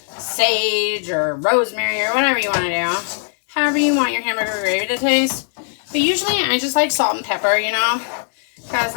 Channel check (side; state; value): right; silent; 66 dB below the other